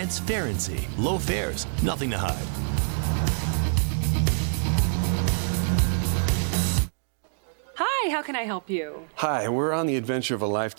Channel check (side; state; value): left; silent; digital silence